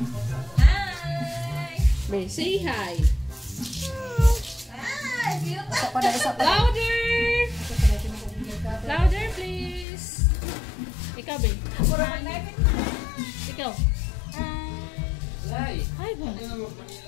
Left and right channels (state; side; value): drops out; right; at 9.9 s